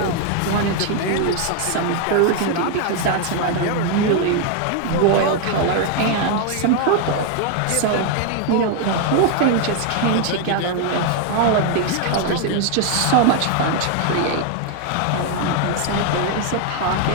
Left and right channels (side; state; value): both; different; correlation 0.00